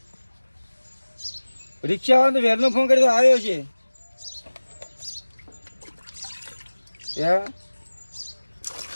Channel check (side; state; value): both; inverted; correlation -1.00